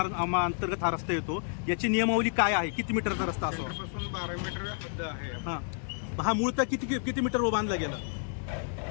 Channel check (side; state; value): right; silent; digital silence